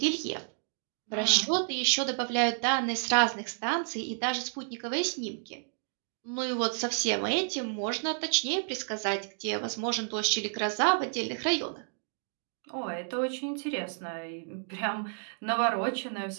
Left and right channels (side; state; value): left; silent; 57 dB below the other